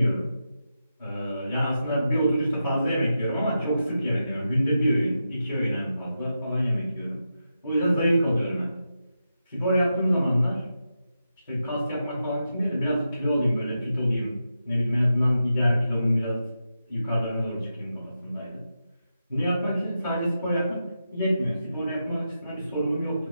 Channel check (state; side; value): inverted; both; correlation -0.88